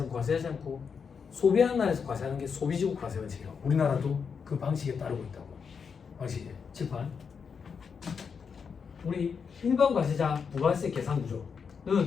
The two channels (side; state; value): right; quieter; 6.1 dB